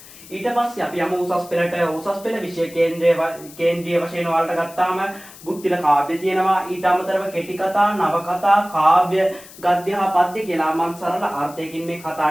ඊට පස්සේ අපි යමු උසස් පෙළට. උසස් පෙළ විෂය කේන්ද්‍රීය වශයෙන් ඔයාලට ගත්තාම බුද්ධිල කාව්‍ය තියෙනවා. ඊට අමතරව කෙටි කතා, නවකතා, කාව්‍ය, ගද්‍ය හා පද්‍ය කියලා මම සරල අර්ථයකින් මේ කතා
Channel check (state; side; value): noise; left; hiss, 19 dB below the sound